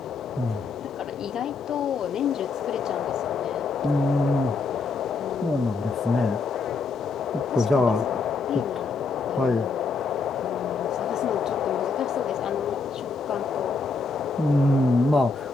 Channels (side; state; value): right; quieter; 4.3 dB